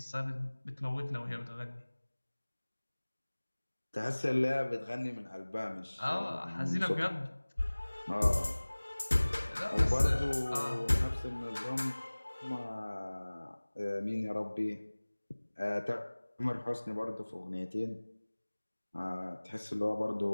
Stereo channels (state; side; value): inverted; both; correlation -1.00